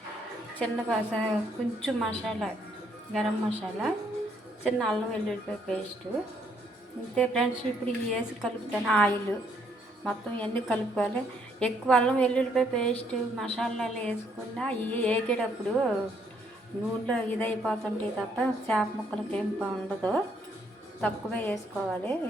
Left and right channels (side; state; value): both; normal; correlation 0.70